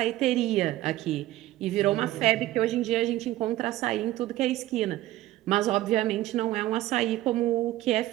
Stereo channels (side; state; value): left; quieter; 15.6 dB